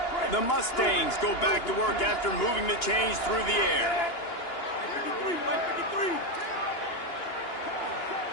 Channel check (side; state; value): right; late; 2.9 ms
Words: The Mustangs go back to work after moving the chains through the air.